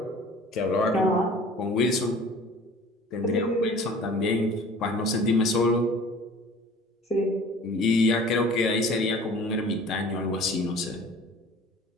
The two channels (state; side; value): normal; both; correlation 0.46